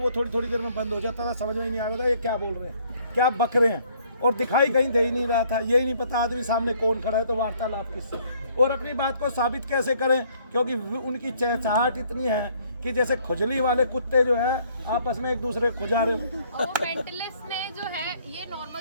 थोड़ी थोड़ी देर में बंद हो जाता था, समझ में ही नहीं आ रहा था ये क्या बोल रहे हैं, क्या बक रहे हैं, और दिखाई कहीं दे ही नहीं रहा था, यही नहीं पता आदमी सामने कौन खड़ा है, तो वार्तालाप किससे और अपनी बात को साबित कैसे करें, क्योंकि उनकी चहचहाट इतनी है कि जैसे खुजली वाले कुत्ते जो है आपस में एक दूसरे को खुजा रहे हो। और वो मेंटलिस्ट ने जो है, ये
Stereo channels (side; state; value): both; inverted; correlation -0.63